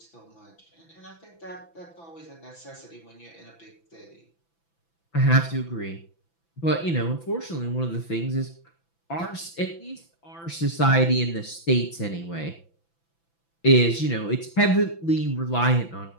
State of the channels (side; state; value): right; late; 6.0 ms